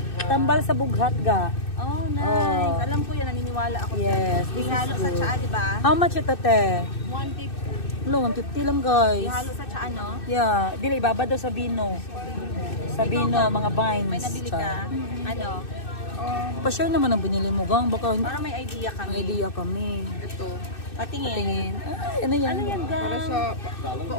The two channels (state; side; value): late; right; 2.6 ms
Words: Tambal sa bughat ga. Oh, nice. Alam ko yan, naniniwala ako. Yes, this is Ihalo sa good. tsaa, di ba? How much ito, te? 150. Hello, 150 lang, guys. Ihalo sa tsaa, no? Yeah, dili ibaba daw sa bino. Sa bino, mga vines. May nabili ka? Ano? Pa-share naman ang binili mo, gang. Baka Para may idea kami. may idea kami. Ito. Patingin. Ay, ano yan? Ano yan, Para gang? sa